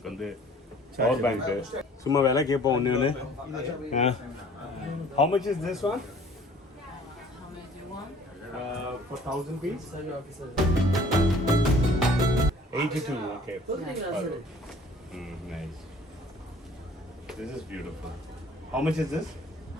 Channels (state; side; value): normal; both; correlation 0.52